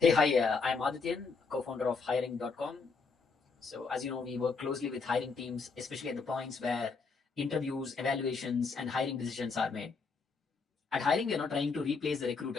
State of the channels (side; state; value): right; quieter; 4.7 dB